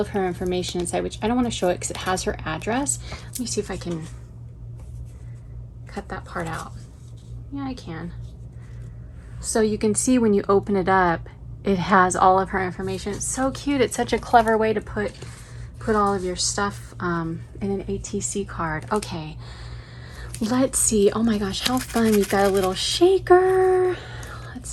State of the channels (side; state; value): both; identical; correlation 1.00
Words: her information inside, which I don't want to show it because it has her address. Let me see if I can cut that part out. Yeah, I can. So you can see when you open it up, it has all of her information. It's so cute. It's such a clever way to put all of your stuff in an ATC card. Okay, let's see. Oh my gosh, how fun. We've got a little shaker. Let's